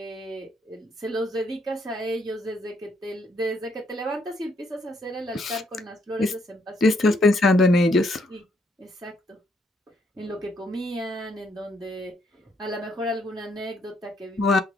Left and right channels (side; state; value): both; normal; correlation 0.72